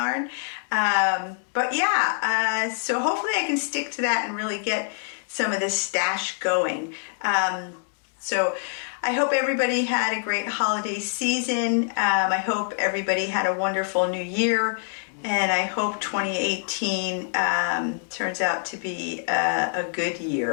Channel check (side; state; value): right; silent; digital silence